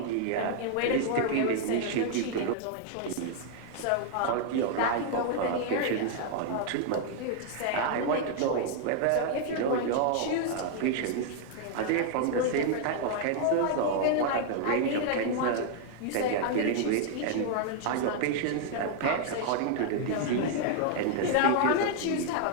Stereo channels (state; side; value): different; both; correlation 0.00